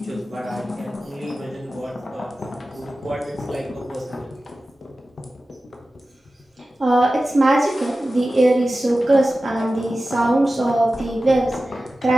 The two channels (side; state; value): both; normal; correlation 0.95